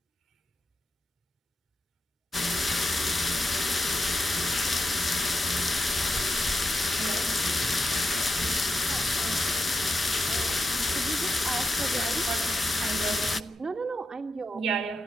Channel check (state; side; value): normal; both; correlation 0.86